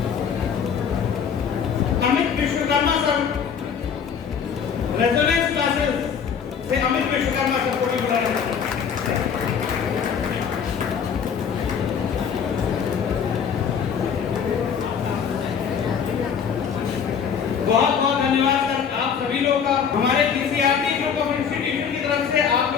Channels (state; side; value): quieter; right; 7.1 dB